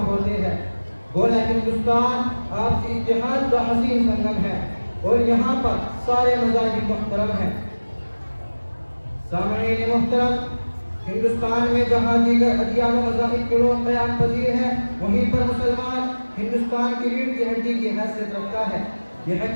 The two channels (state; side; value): inverted; both; correlation -1.00